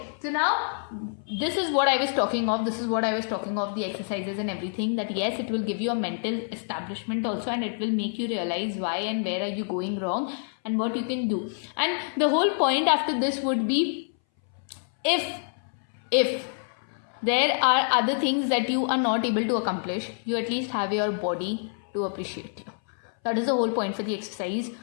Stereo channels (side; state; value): right; silent; 59 dB below the other